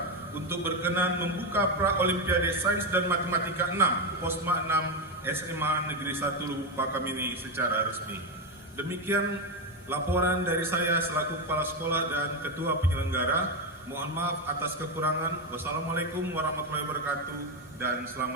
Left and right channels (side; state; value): both; normal; correlation 0.10